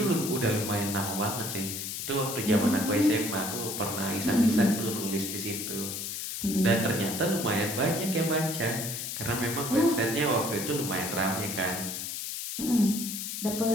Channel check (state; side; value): noise; left; hiss, 5 dB below the sound